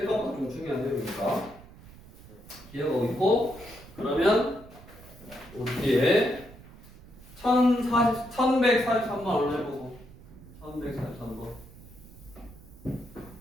좀 중요한 내용이니까 기억하고 있고, 그러면 우리 뒤에 1143번 얼른 해보고. 1143번.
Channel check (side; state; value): right; noise; rumble, 20 dB below the sound